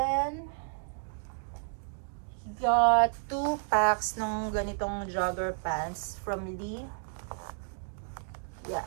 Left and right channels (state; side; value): silent; left; digital silence